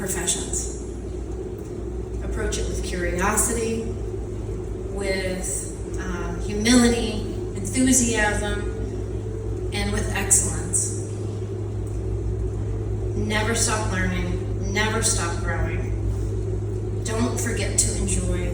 Approach it with curiosity, with humility, enthusiasm, and with excellence. Never stop learning, never stop growing. Don't forget to enjoy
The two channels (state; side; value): identical; both; correlation 1.00